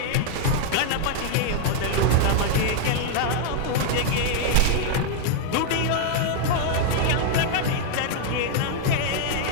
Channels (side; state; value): both; different; correlation 0.00